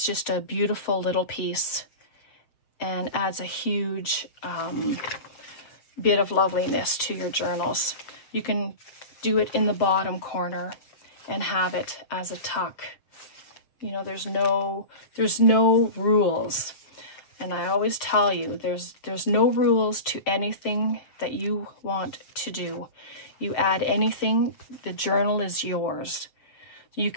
just a beautiful little piece and adds a huge bit of loveliness to your journals. You can do it in the bottom corner and have it as a tuck. You know, there's no rules. And I always tell you, there's no rules to anything that you want to do. You add anything, the journal is yours. You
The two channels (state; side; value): late; right; 7.2 ms